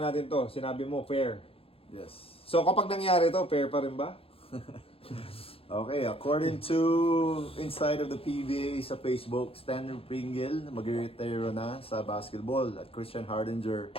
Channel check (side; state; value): right; late; 0.27 ms